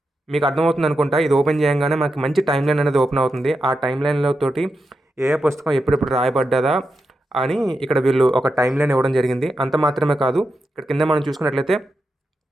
మీకు అర్థమవుతుంది అనుకుంటా. ఇది ఓపెన్ చేయగానే మనకి మంచి టైం లైన్ అనేది ఓపెన్ అవుతుంది. ఆ టైం లైన్లో తోటి ఏ పుస్తకం ఎప్పుడెప్పుడు రాయబడ్డదా అని ఇక్కడ వీళ్ళు ఒక టైం లైన్ ఇవ్వడం జరిగింది. అంత మాత్రమే కాదు, ఇక్కడ కింద మనం చూసుకున్నట్లయితే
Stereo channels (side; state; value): both; normal; correlation 0.87